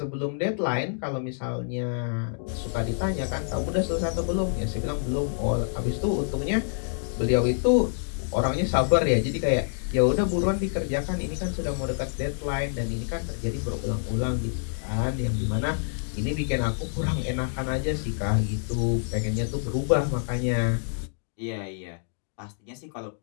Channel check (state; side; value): silent; right; digital silence